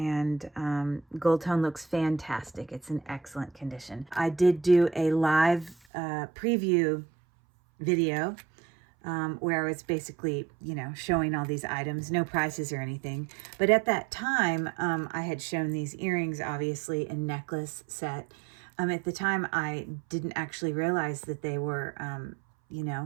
gold tone looks fantastic. It's in excellent condition. I did do a live preview video where I was basically, showing all these items, no prices or anything. But at that time, I had shown these earrings, obviously, a necklace set. At the time, I didn't actually realize that they were,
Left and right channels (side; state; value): left; drops out; at 5.8 s